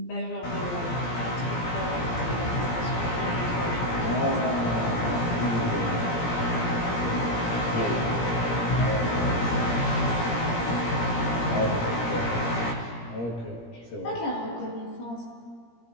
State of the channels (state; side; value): late; right; 17 ms